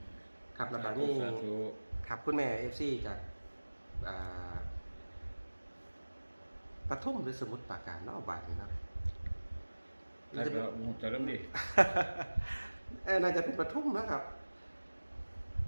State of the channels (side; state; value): both; inverted; correlation -1.00